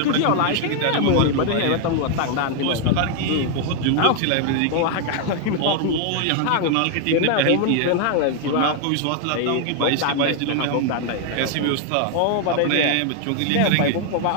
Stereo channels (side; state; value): both; different; correlation 0.00